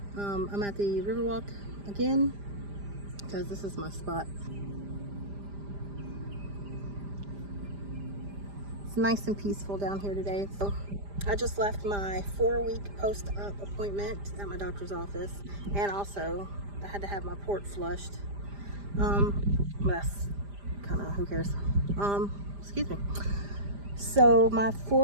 I'm at the Riverwalk again because this is my spot. It's nice and peaceful down here today. So I just left my 4-week post-op appointment at my doctor's office, and also I had to have my port flushed. That's kind of, who cares? Excuse me. So my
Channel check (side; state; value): left; late; 5.0 ms